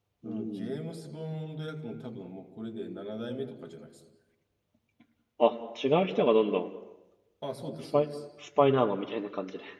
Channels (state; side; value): identical; both; correlation 1.00